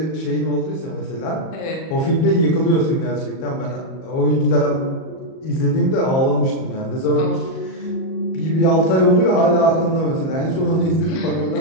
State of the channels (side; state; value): right; late; 38 ms